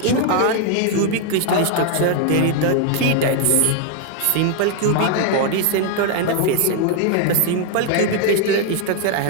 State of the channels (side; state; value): both; different; correlation 0.00